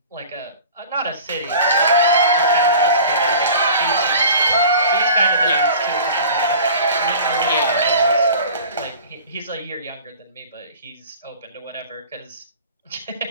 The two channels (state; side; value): inverted; both; correlation -0.42